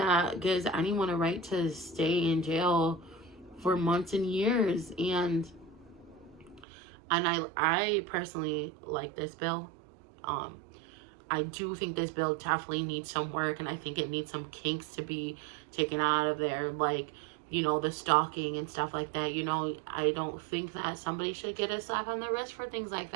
gives anyone a right to stay in jail for months and years. And I personally like this bill. I do think this bill definitely needs some work, and I think it needs some kinks to be taken out of there, like, the stalking and stuff like that. I don't think that somebody should get a slap on the wrist for things like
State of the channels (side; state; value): left; drops out; at 6.7 s